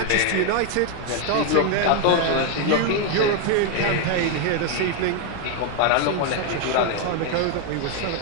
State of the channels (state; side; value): different; both; correlation 0.01